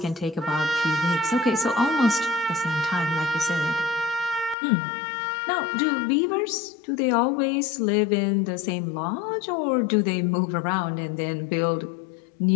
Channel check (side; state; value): right; drops out; at 4.5 s